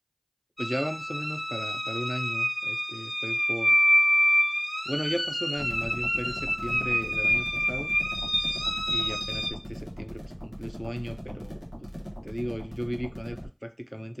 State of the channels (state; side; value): identical; both; correlation 1.00